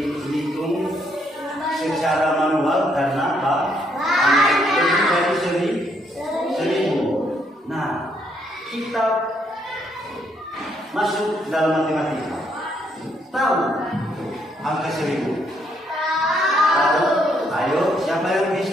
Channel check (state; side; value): normal; both; correlation 0.72